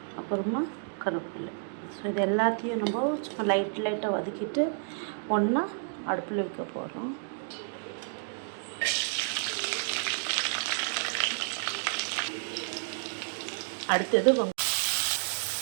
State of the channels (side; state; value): left; silent; digital silence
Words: அப்புறமா கருவேப்பிலை. ஸோ இது எல்லாத்தையும் நம்ம சும்மா லைட்டாக வதக்கிட்டு ஒன்றா அடுப்பில் வைக்க போகிறோம். அடுத்தது